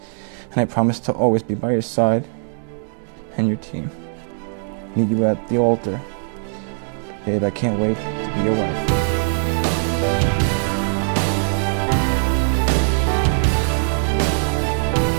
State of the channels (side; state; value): left; silent; digital silence